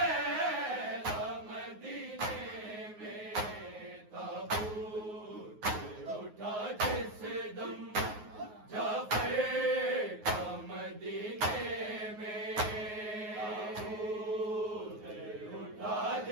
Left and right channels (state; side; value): late; left; 9.5 ms